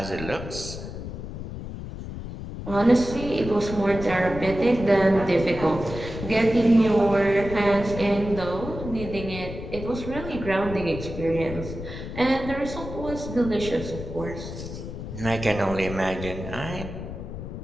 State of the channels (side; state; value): left; noise; rumble, 9 dB below the sound